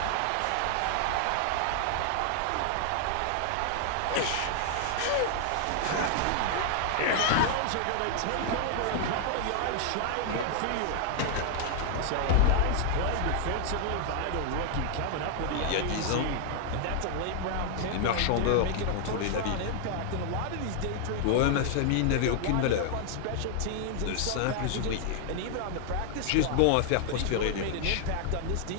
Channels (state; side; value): different; both; correlation 0.00